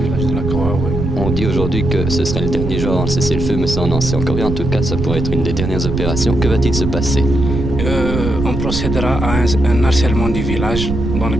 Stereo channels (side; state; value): right; noise; rumble, 3 dB below the sound